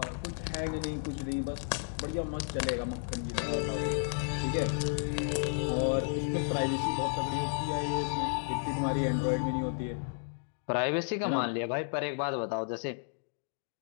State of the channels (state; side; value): silent; right; digital silence